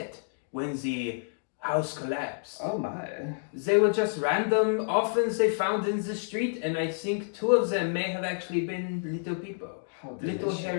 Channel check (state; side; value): silent; right; digital silence